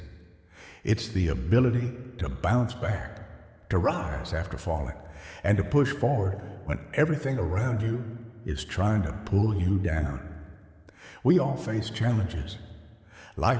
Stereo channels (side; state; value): both; identical; correlation 1.00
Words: It's the ability to bounce back, to rise after falling, and to push forward when everything around you is trying to pull you down. We all face challenges.